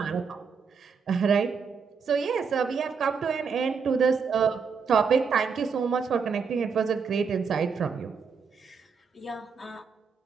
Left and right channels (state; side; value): quieter; left; 5.8 dB